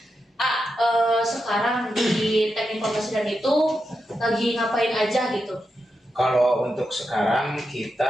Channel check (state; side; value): normal; both; correlation 0.87